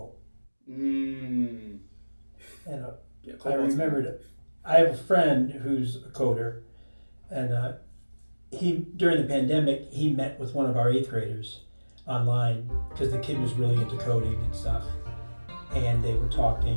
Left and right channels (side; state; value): both; inverted; correlation -1.00